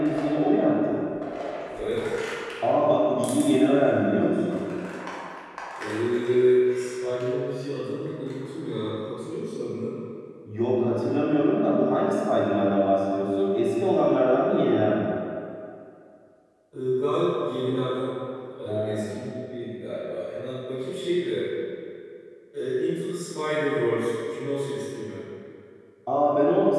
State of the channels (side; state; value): both; identical; correlation 1.00